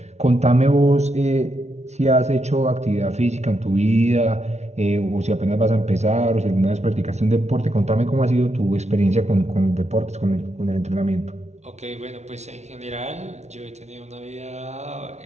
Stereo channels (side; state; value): left; late; 0.32 ms